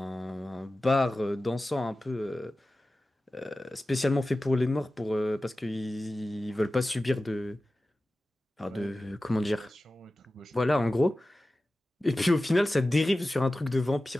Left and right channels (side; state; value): both; normal; correlation 0.95